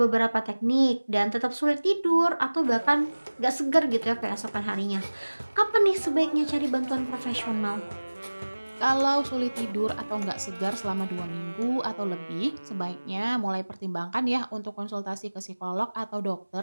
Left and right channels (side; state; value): both; inverted; correlation -1.00